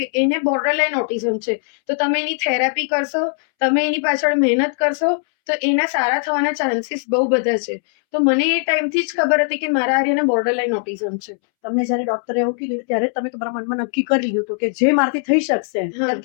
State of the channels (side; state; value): right; silent; 66 dB below the other